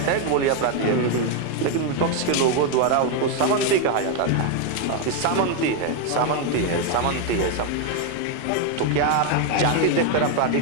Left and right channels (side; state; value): both; different; correlation 0.01